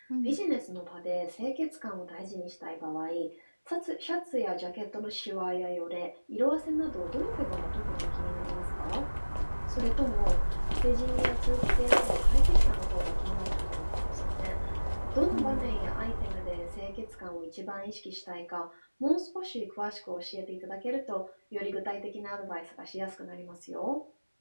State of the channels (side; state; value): both; inverted; correlation -1.00